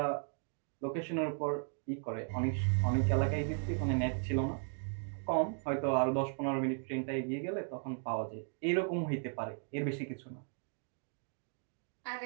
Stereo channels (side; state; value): left; silent; 54 dB below the other